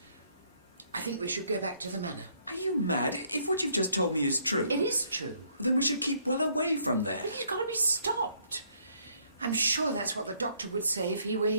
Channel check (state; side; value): inverted; both; correlation -0.67